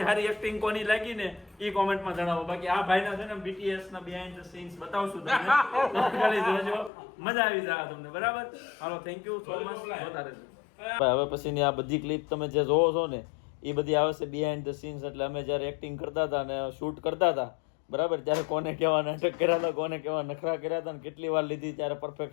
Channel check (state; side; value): drops out; right; at 6.9 s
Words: સારી એક્ટિંગ કોની લાગી ને એ કોમેન્ટમાં જણાવો બાકી આ ભાઈના છે ને BTS ના બિહાઇન્ડ ધ સીન્સ બતાવશું તમને ખાલી જોજો મજા આવી જાય તમને બરાબર હાલો થેન્ક યુ સો મચ જોતા રહેજો હવે પછીની આ બધી ક્લિપ તમે જે જોવો છો ને એ બધી આવે છે બિહાઇન્ડ ધ સીન્સ એટલે અમે જ્યારે એક્ટિંગ કરતા હતા અને શૂટ કરતા હતા બરાબર ત્યારે કોને કેવા નાટક કર્યા હતા કોને કેવા નખરા કર્યા હતા ને કેટલી વાર લીધી ત્યારે